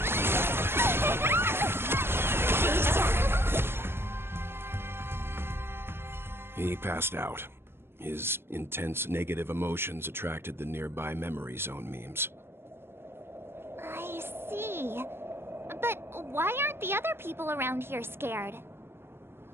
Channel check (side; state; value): left; late; 0.11 ms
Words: He passed out. His intense negative emotions attracted the nearby Memory Zone memes. I see. But why aren't the other people around here scared?